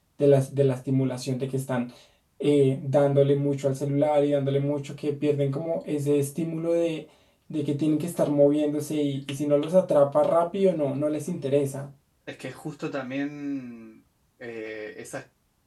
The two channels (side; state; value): both; identical; correlation 1.00